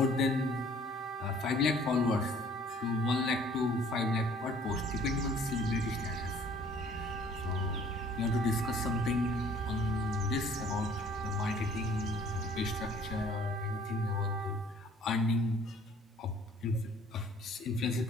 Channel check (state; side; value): normal; both; correlation 0.55